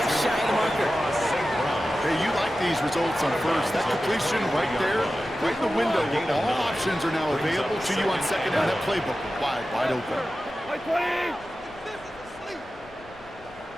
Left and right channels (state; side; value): noise; left; rumble, 23 dB below the sound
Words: shy of the marker. Hey, you like these results on first. That completion right there, right in the window where all options are now available to you on second down. That playbook wide open.